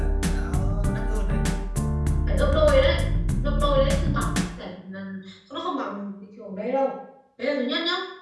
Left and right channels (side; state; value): both; identical; correlation 1.00